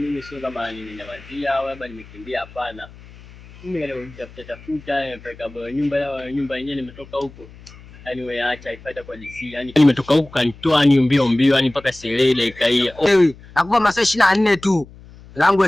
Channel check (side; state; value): left; noise; hum, 21 dB below the sound